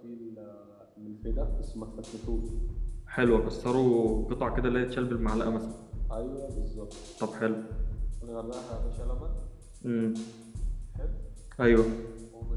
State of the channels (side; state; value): both; identical; correlation 1.00